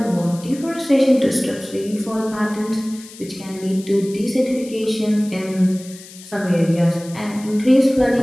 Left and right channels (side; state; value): left; noise; hiss, 18 dB below the sound